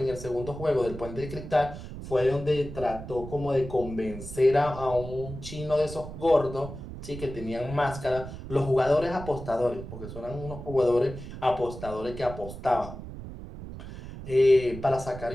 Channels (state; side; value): noise; right; rumble, 11 dB below the sound